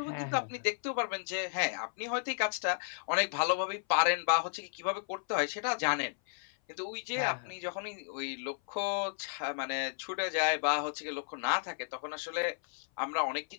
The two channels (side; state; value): right; silent; 55 dB below the other